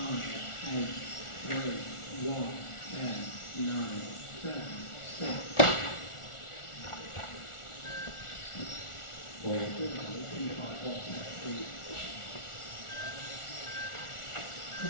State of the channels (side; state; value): right; late; 1.4 ms